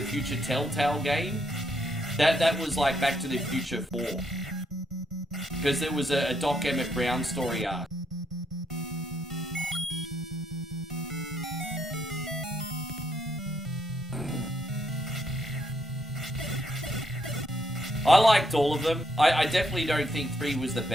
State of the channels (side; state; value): both; normal; correlation 0.75